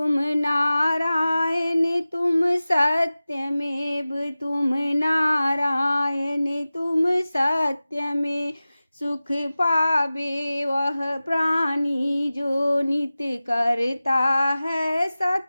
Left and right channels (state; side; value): inverted; both; correlation -0.96